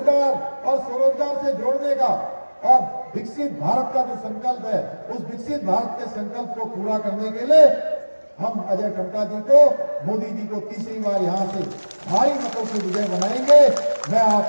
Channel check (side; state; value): both; inverted; correlation -1.00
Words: और स्वरोजगार से जोड़ने का और विकसित भारत का जो संकल्प है, उस विकसित भारत के संकल्प को पूरा करने के लिए हम अजय टम्टा जी को, मोदी जी को तीसरी बार यहां से भारी मतों से विजय बनाएंगे। मैं आप